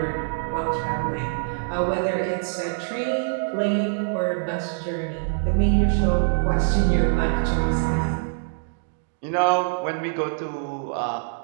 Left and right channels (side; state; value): left; silent; digital silence